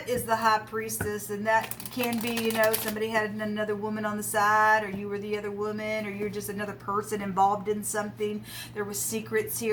is the high priestess, and that can be, you know, somebody had another woman on the side, or you were the other woman, or you're just another person involved in something. There was secrets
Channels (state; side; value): identical; both; correlation 1.00